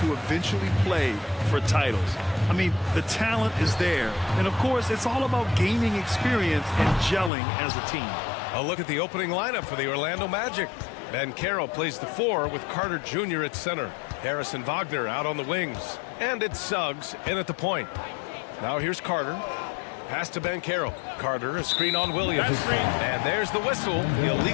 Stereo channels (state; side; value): drops out; right; at 7.3 s